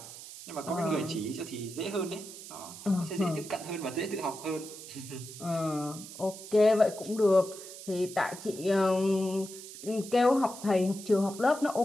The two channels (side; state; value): right; noise; hiss, 14 dB below the sound